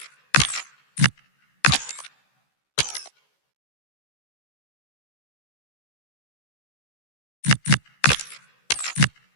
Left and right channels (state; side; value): late; right; 14 ms